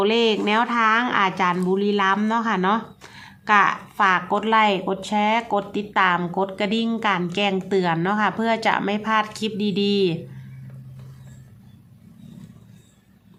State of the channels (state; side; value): identical; both; correlation 1.00